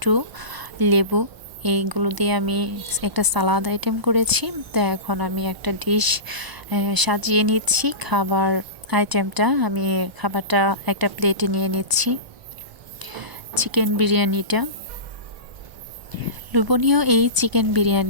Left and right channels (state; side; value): late; left; 1.0 ms